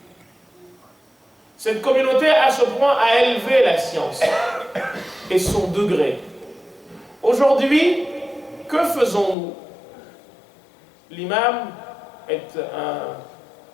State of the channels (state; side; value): drops out; right; at 9.3 s